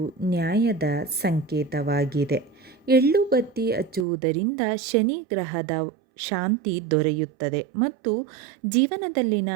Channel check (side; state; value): left; drops out; at 4.0 s